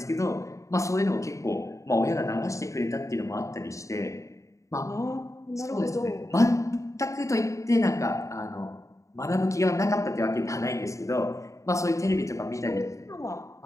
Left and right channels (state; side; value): late; right; 0.15 ms